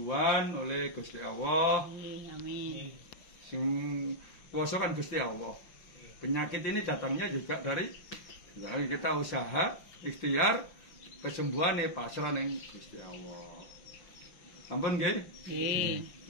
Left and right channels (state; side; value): late; right; 5.7 ms